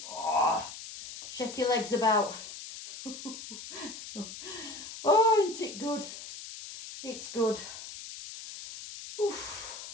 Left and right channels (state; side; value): noise; left; hiss, 11 dB below the sound